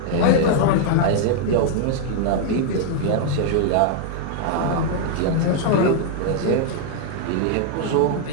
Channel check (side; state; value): both; different; correlation 0.00